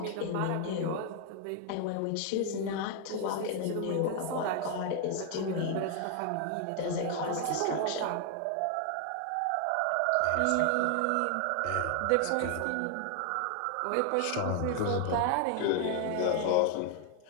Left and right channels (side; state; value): both; different; correlation 0.00